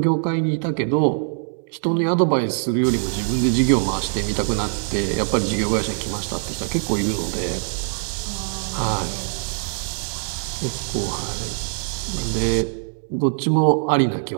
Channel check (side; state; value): left; silent; digital silence